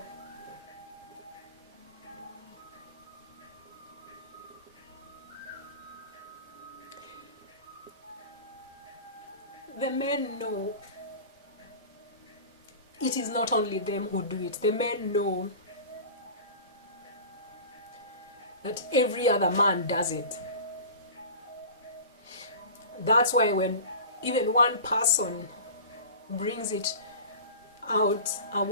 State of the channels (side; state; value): both; inverted; correlation -0.36